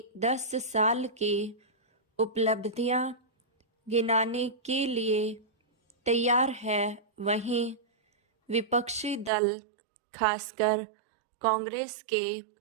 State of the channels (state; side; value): drops out; left; at 9.3 s